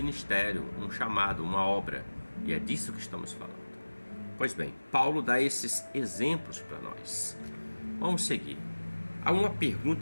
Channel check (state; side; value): inverted; both; correlation -1.00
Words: um chamado, uma obra. E é disso que estamos falando. Pois bem, Paulo dá esses exemplos para nós. Vamos seguir. Há uma